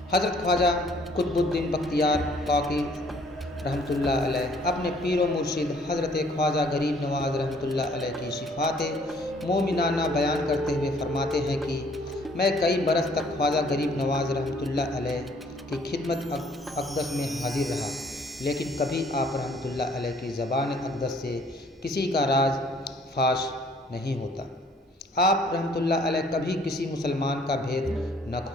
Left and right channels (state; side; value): normal; both; correlation 0.60